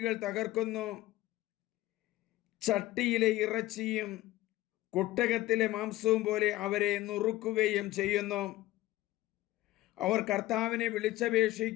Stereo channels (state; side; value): quieter; right; 16.6 dB